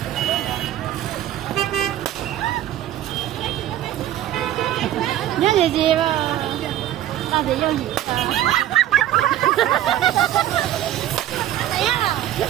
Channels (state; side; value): quieter; left; 12.5 dB